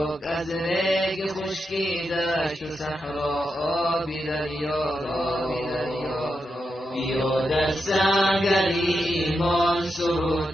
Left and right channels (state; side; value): normal; both; correlation 0.86